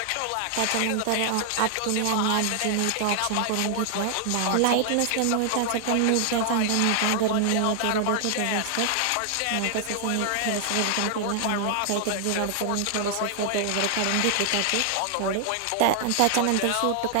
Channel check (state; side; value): different; both; correlation 0.00